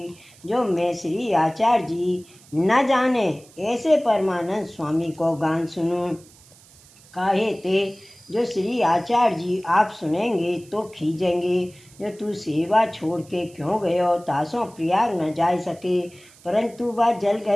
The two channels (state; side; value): noise; right; hiss, 25 dB below the sound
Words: जो मैं श्री आचार्य जी न जाने ऐसे परमानंद स्वामी को गान सुनूं। काहे ते जो श्री आचार्य जी आप सुनेंगे तो खींचेंगे, जो तू सेवा छोड़ के क्यों गयो, तासों प्रयाग न जा सके। परंतु वह